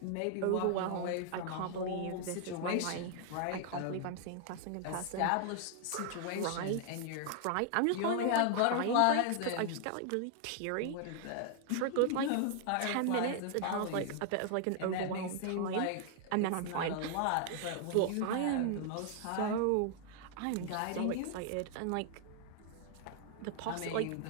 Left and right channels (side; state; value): both; different; correlation 0.00